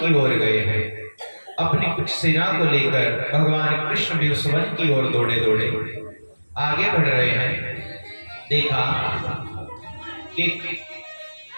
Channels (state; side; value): inverted; both; correlation -1.00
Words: ओर गए हैं। अपनी कुछ सेना को लेकर भगवान कृष्ण भी उस वन की ओर दौड़े दौड़े आगे बढ़ रहे हैं। देखा कि